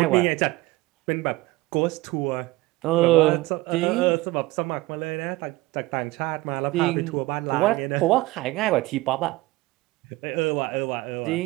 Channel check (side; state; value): left; quieter; 20.3 dB